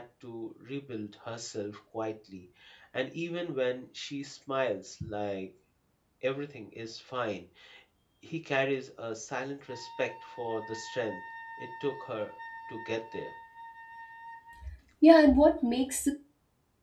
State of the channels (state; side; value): identical; both; correlation 1.00